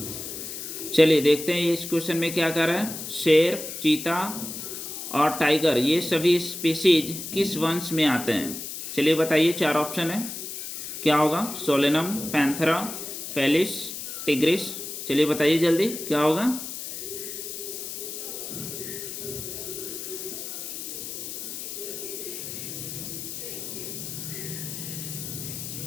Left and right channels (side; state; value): left; noise; hiss, 7 dB below the sound